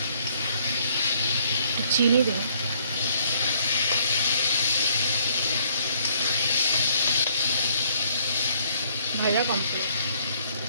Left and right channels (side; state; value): both; inverted; correlation -0.65